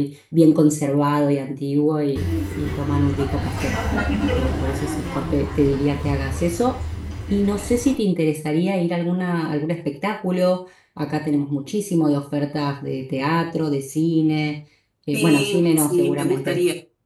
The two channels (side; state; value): both; identical; correlation 1.00